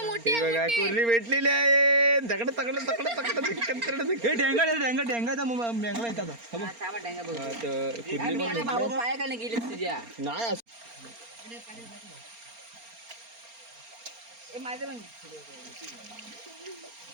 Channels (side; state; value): left; late; 4.3 ms